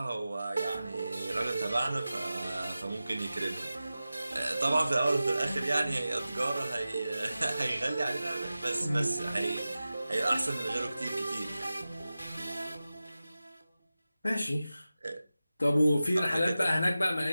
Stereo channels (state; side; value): inverted; both; correlation -0.94